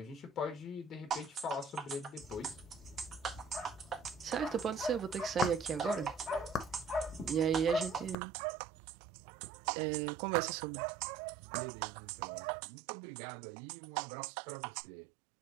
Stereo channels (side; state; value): left; drops out; at 8.2 s